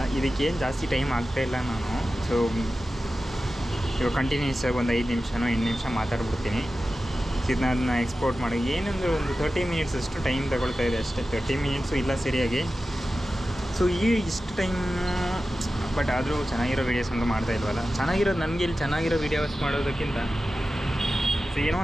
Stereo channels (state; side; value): normal; both; correlation 0.94